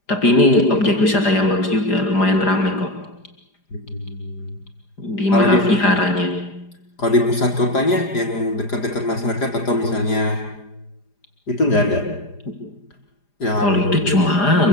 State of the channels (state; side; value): late; right; 4.9 ms